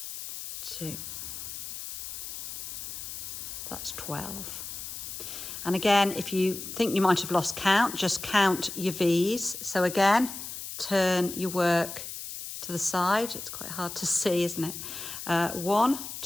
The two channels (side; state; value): left; noise; hiss, 8 dB below the sound